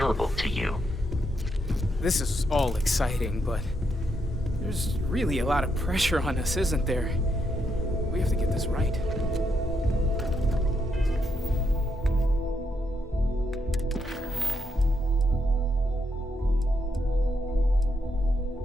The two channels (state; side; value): normal; both; correlation 0.79